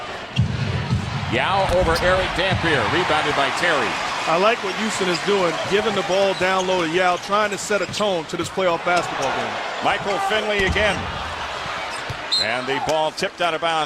Yao over Eric Dampier, rebounded by Terry. I like what Houston is doing, giving the ball down low to Yao, trying to set a tone to this playoff basketball game. Michael Finley again. And the ball tipped out of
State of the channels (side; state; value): both; identical; correlation 1.00